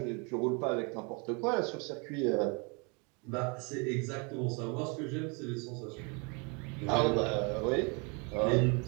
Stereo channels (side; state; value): left; quieter; 32.5 dB